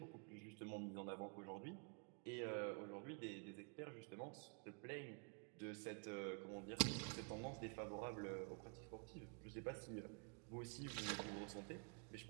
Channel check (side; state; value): left; quieter; 38.3 dB